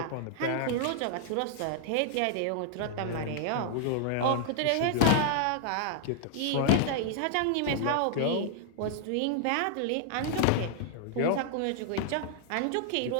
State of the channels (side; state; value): both; different; correlation -0.01